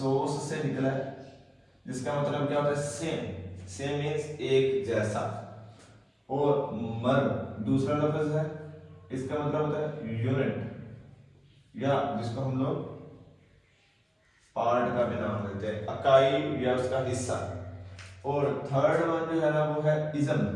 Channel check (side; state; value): both; identical; correlation 1.00